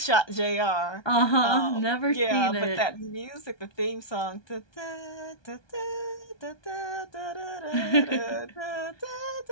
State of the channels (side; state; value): right; late; 1.2 ms